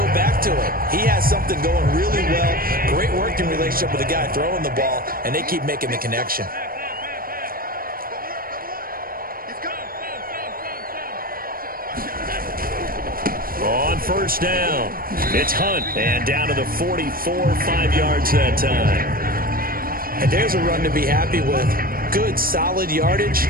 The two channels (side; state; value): left; late; 0.42 ms